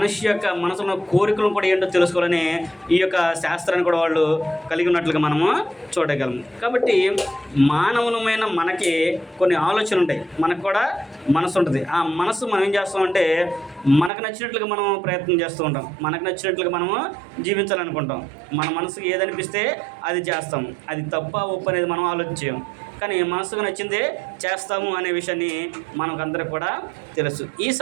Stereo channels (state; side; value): drops out; left; at 14.1 s